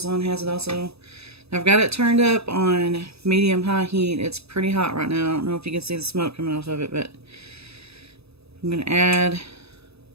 has it also. I've got it turned up on medium-high heat. It's pretty hot right now. I don't know if you can see the smoke coming off of it, but I'm going to add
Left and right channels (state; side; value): late; left; 0.79 ms